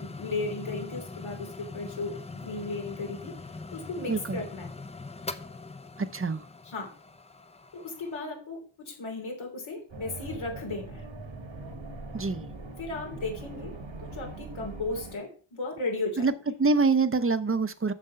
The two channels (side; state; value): both; normal; correlation 0.17